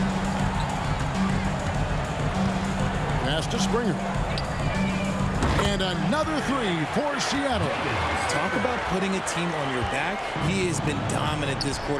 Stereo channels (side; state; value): both; identical; correlation 1.00